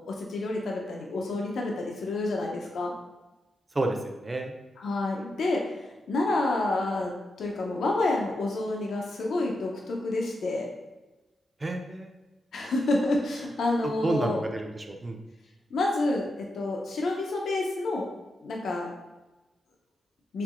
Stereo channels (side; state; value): both; normal; correlation 0.86